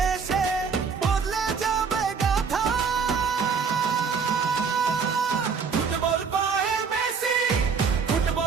বদলে যাবে গাথা। ফুটবল পায়ে মেসি,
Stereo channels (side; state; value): left; quieter; 5.8 dB